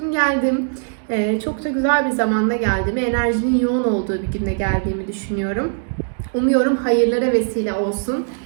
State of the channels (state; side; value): silent; left; digital silence